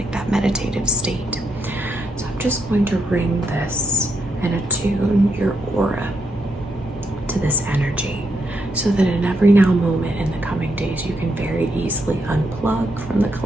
that meditative state. So I'm just going to ring this and attune your aura to this energy, so that in every now moment in the coming days, you can very easily unplug from the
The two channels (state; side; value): normal; both; correlation 0.80